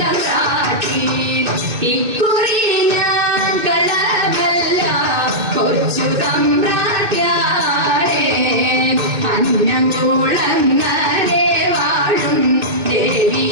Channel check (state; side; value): late; left; 2.2 ms